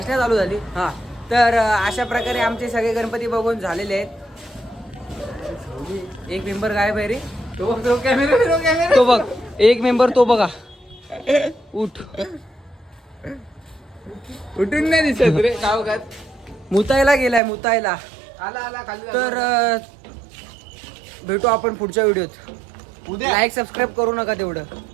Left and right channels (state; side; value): drops out; left; at 17.4 s